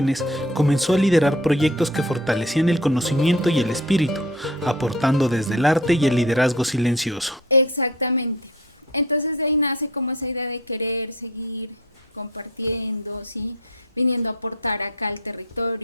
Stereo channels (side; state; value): both; normal; correlation 0.42